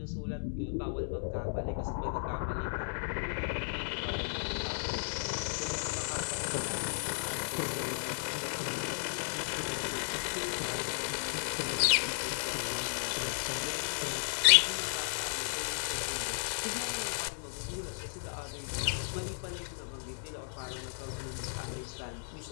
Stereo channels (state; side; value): silent; right; digital silence